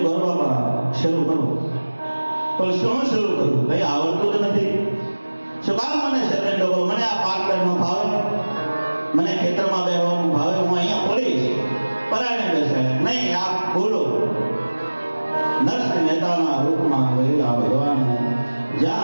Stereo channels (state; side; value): inverted; both; correlation -1.00